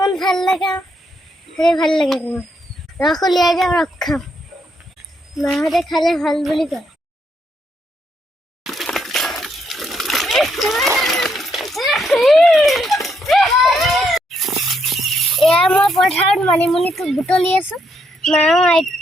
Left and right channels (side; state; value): both; normal; correlation 0.76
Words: ভাল লাগে সেই ভাল লাগে ৰস উলিয়াই যাম ৰস খাম মাহঁতে খালে ভাল বুলি কয় এয়া মই পথাৰত মানিমুনিটো বুটলি আছো মা